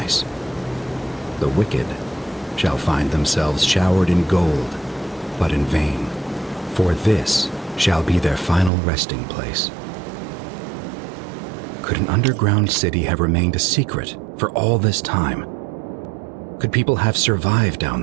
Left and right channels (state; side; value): drops out; left; at 8.7 s